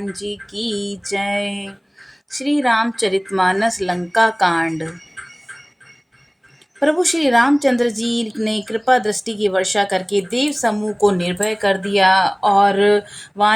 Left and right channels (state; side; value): identical; both; correlation 1.00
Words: जी की जय। श्री रामचरितमानस लंका कांड। प्रभु श्री रामचंद्र जी ने कृपा दृष्टि की वर्षा करके देव समूह को निर्भय कर दिया और